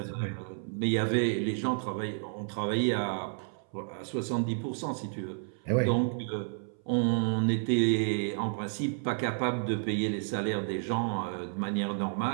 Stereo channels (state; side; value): silent; left; 57 dB below the other